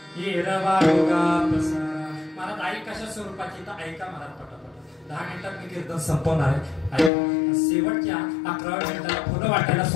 महाराज आई कशा स्वरूपाची तर ऐका महाराज पटापट. 10 मिनिटात मी कीर्तन संपवणार आहे. शेवटच्या 11व्या मिनिटाला फुलं वाटायला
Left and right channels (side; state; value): right; drops out; at 7.1 s